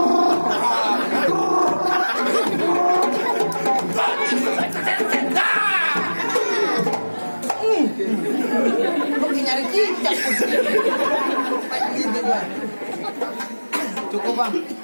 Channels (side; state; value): both; inverted; correlation -1.00